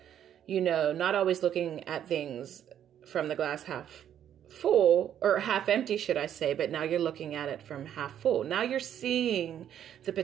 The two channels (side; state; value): left; quieter; 10.0 dB